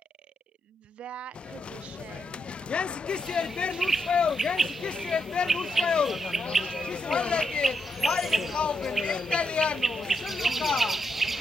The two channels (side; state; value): both; normal; correlation 0.81